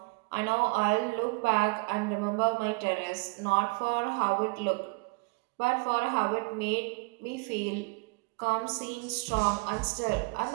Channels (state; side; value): quieter; left; 30.9 dB